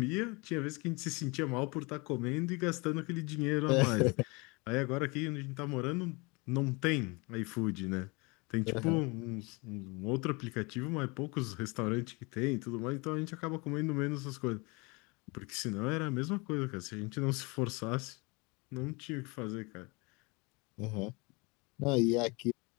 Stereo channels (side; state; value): right; quieter; 27.8 dB